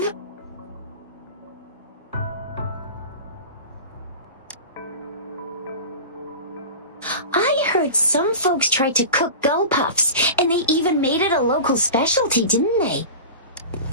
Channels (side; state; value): both; inverted; correlation -0.32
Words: I heard some folks tried to cook gull puffs, and they even made it a local specialty, didn't they?